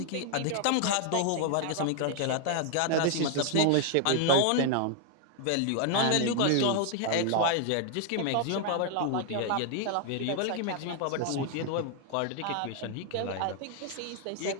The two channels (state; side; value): different; both; correlation 0.00